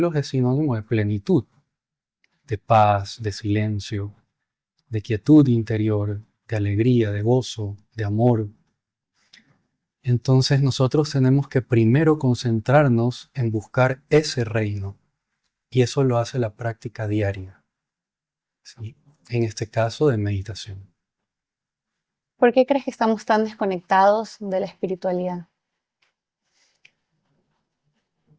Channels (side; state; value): both; identical; correlation 1.00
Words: es sinónimo de plenitud, de paz, de silencio, de quietud interior, de alegría, de gozo, de amor. Entonces nosotros tenemos que primero concentrarnos en buscar ese reino. Y eso lo hace la práctica diaria, ¿sí? En este caso de meditación. ¿Por qué crees que estamos tan desconectados de la espiritualidad?